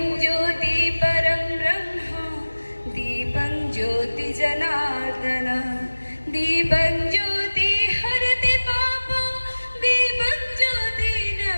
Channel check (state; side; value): inverted; both; correlation -1.00